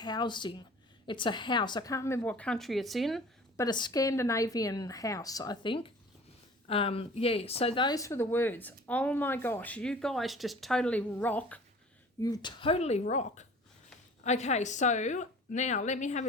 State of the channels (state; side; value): normal; both; correlation 0.45